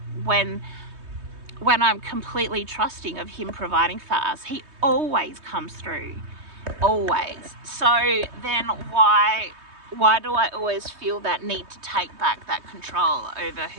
when I'm completely trusting of him providing for us, he always comes through, always. So then why do I always feel that need to take back that control over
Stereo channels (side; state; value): left; late; 3.2 ms